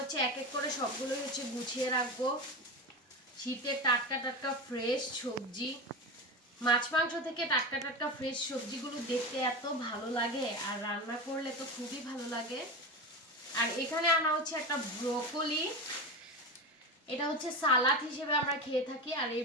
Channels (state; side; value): normal; both; correlation 0.23